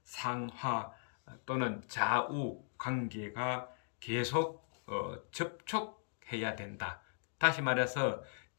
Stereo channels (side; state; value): right; silent; digital silence